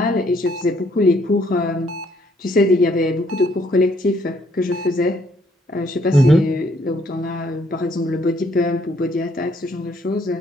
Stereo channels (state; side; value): normal; both; correlation 0.67